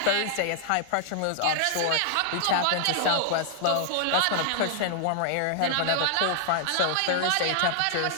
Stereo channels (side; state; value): both; different; correlation -0.01